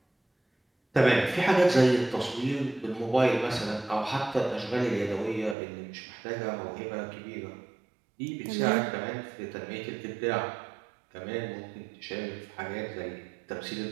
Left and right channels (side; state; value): left; drops out; at 5.6 s